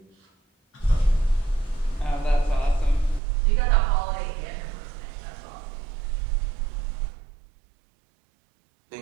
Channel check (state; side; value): drops out; left; at 3.2 s